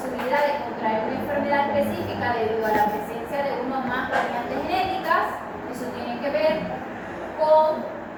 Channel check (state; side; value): identical; both; correlation 1.00